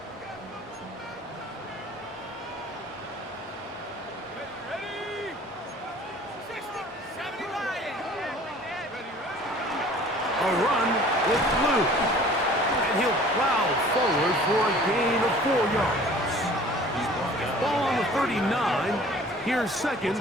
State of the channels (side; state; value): both; normal; correlation 0.49